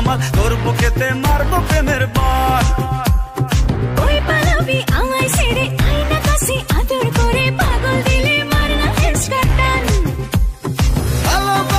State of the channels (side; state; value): both; identical; correlation 1.00